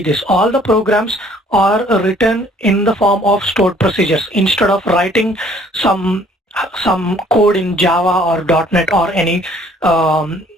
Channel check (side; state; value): both; normal; correlation 0.58